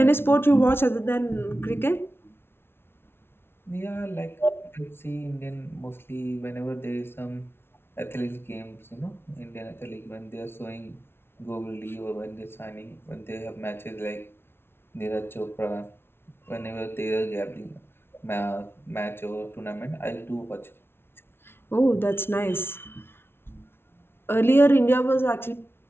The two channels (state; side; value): late; right; 0.12 ms